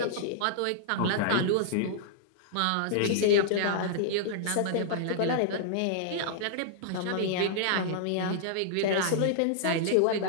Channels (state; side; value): different; both; correlation -0.02